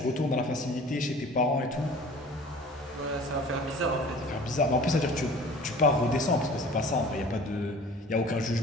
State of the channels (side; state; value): both; normal; correlation 0.45